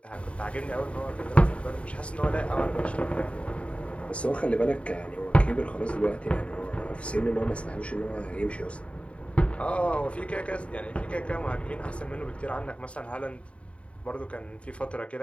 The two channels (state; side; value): late; right; 0.062 ms